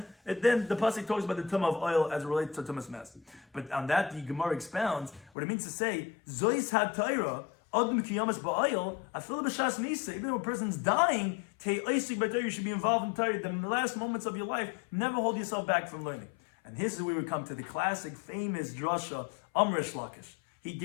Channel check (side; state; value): right; drops out; at 5.3 s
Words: and then the pasuk talks about the tumah of oil as it relates to tumas mess. But on that, the Gemara expounds what it means to say, Zois ha-Torah, Adam kiyamas ba'oil, afil b'shas misa, even though a person's dying, you should be involved in Torah. The last moments of your life, never hold yourself back from learning. And this is where we come to the classic, famous drasha, Amrish Lakish. He